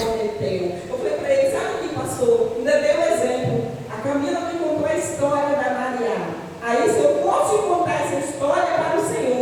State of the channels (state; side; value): identical; both; correlation 1.00